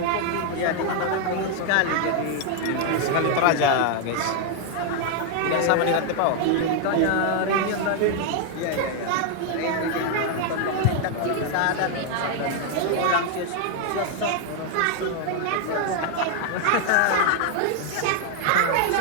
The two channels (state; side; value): different; both; correlation 0.00